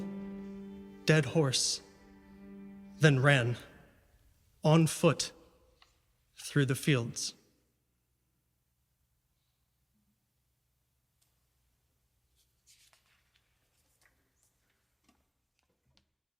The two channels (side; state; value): both; identical; correlation 1.00